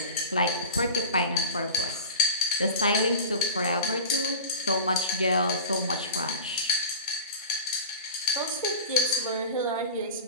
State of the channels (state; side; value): inverted; both; correlation -0.33